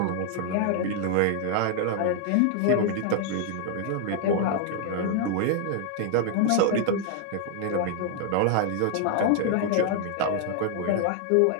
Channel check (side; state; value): both; different; correlation 0.00